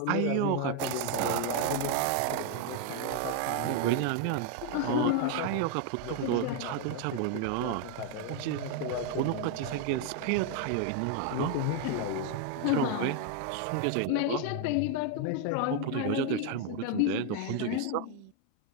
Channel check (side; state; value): both; different; correlation 0.00